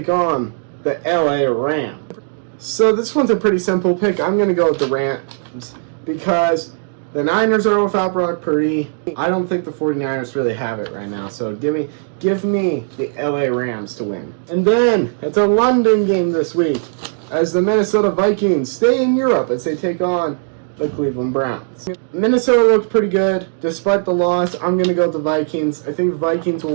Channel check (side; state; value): left; silent; 67 dB below the other